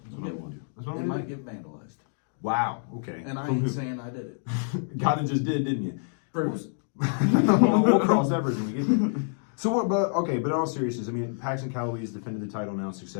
That's what I'm gonna do. That's what It I'm gonna might do. get vandalized. Wow. Okay. And I From ain't who? saying I did it. Kinda just did, didn't you? Proves. We'll cross that bridge when we get there. So what? But in all seriousness, I mean, Paxton Calloway has defended the title now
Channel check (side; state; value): right; silent; digital silence